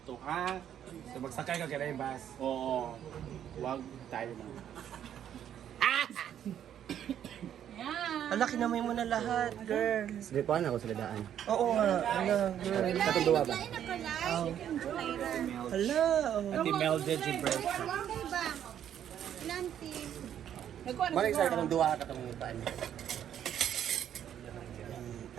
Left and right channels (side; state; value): left; quieter; 10.0 dB